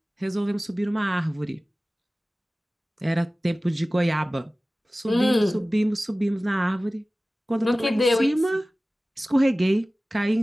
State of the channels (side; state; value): both; normal; correlation 0.97